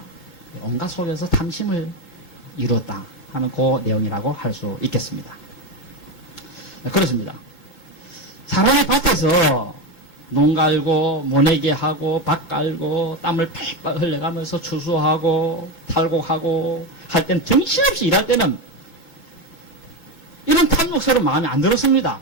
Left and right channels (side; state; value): right; late; 2.2 ms